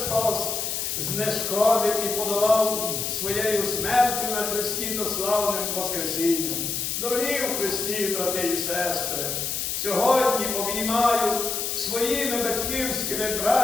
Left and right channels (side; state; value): left; noise; hiss, 2 dB below the sound